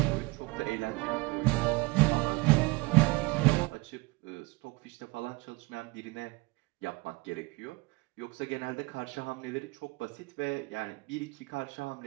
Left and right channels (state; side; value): quieter; left; 24.3 dB